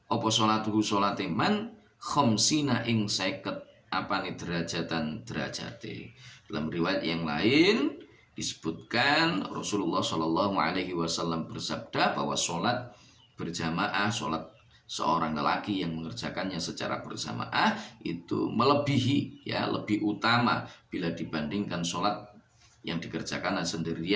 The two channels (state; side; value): identical; both; correlation 1.00